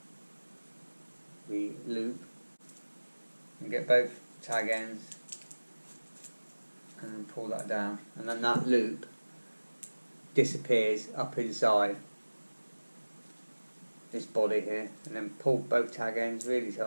the loop and get both tag ends and then pull that down, and then that loop disappears up inside this body here, and then pull both tag ends really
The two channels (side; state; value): both; inverted; correlation -1.00